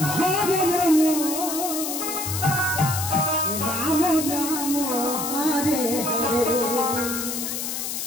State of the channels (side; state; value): left; noise; hiss, 4 dB below the sound